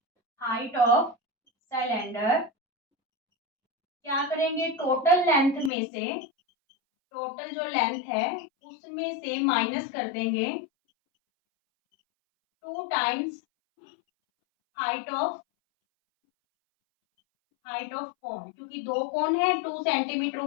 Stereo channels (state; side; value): drops out; right; at 5.7 s